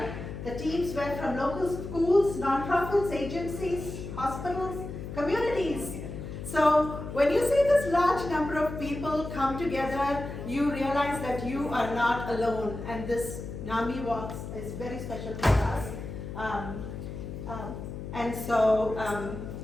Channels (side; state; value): left; noise; hum, 8 dB below the sound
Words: The teams were from local schools, nonprofits, agencies, hospitals, communities. So when you see this large number of people come together, you realize that you are not alone, and this NAMI Walks is very special for us. And so